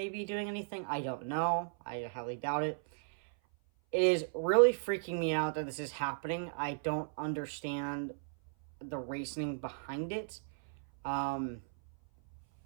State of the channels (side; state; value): left; silent; 54 dB below the other